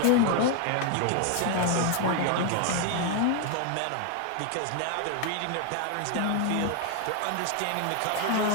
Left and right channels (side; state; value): both; different; correlation 0.00